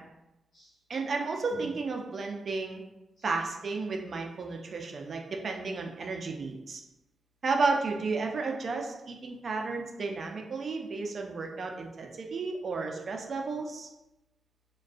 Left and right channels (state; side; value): quieter; left; 3.5 dB